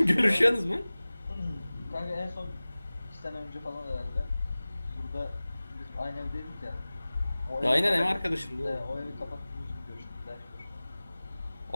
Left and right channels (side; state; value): both; inverted; correlation -0.98